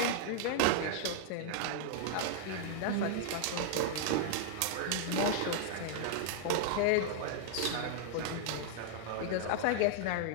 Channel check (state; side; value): different; both; correlation -0.01